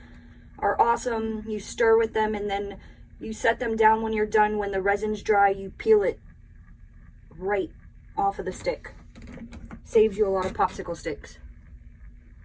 are awesome. You stir with them and then you set them down when you're done. When the resin's dry, you peel it right off of the stick. Saves you a lot of popsicle sticks.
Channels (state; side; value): identical; both; correlation 1.00